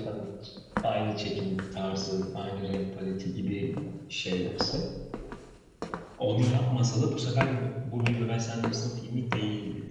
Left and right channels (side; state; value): both; identical; correlation 1.00